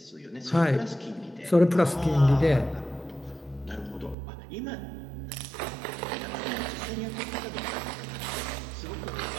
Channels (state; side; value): drops out; left; at 4.2 s